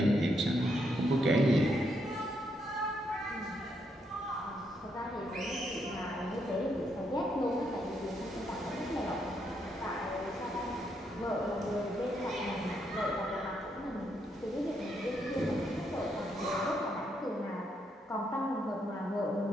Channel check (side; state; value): both; normal; correlation 0.77